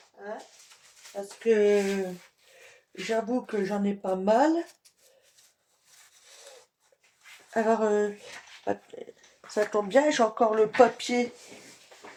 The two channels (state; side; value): identical; both; correlation 1.00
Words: Hein, parce que j'avoue que j'en ai pas mal. Alors, ça tombe bien, j'ai encore le papier